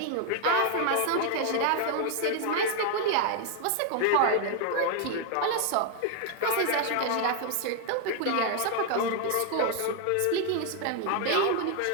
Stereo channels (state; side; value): different; both; correlation 0.01